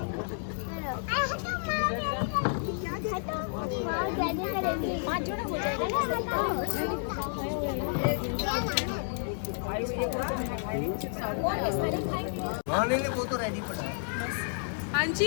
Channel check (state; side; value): silent; right; digital silence